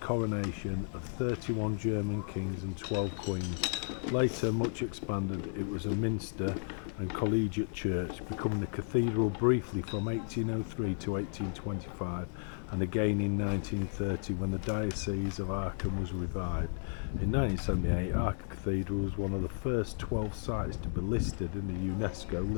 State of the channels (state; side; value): silent; right; digital silence